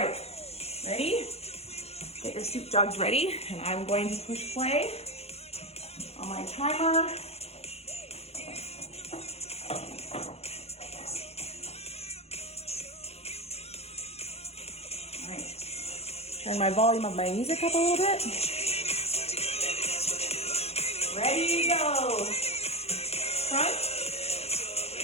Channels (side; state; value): right; late; 0.30 ms